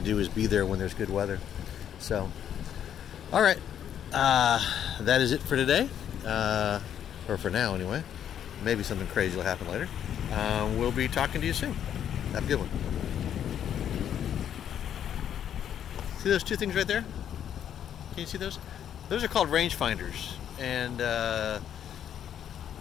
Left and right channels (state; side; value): quieter; right; 9.6 dB